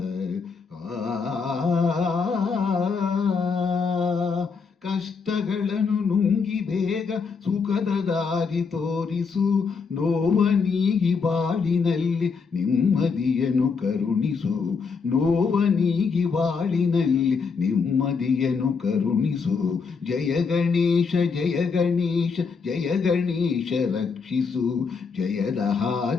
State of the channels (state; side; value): quieter; right; 5.2 dB